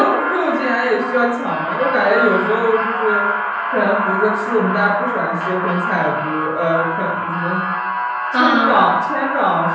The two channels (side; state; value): both; identical; correlation 1.00